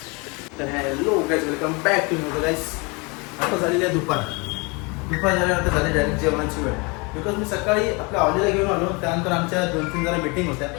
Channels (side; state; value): right; quieter; 28.8 dB